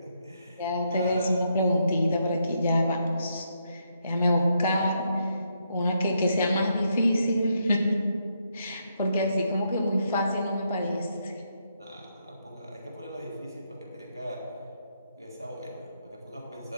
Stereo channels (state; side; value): inverted; both; correlation -0.78